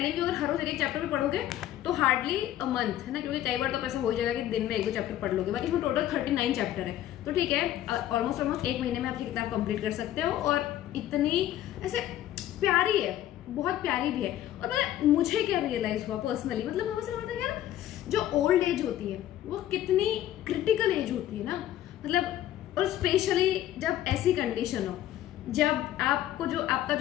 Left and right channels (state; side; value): quieter; right; 12.7 dB